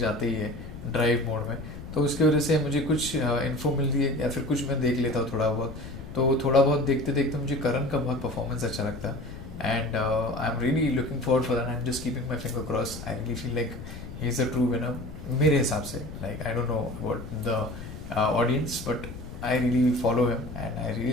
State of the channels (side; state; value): left; noise; rumble, 11 dB below the sound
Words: ही है ड्राइव मोड में। तो उसकी वजह से मुझे कुछ इन्फो मिलती है या फिर कुछ मैं देख लेता हूँ थोड़ा बहुत, तो थोड़ा बहुत देखते देखते मुझे करण का बहुत परफॉर्मेंस अच्छा लगता है, and I am really looking forward for that, I am just keeping my finger cross. I really feel like he is a true winner मेरे हिसाब से, like I don't know about the audience, but I really follow him and I